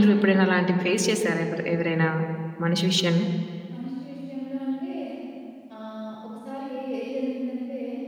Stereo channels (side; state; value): both; identical; correlation 1.00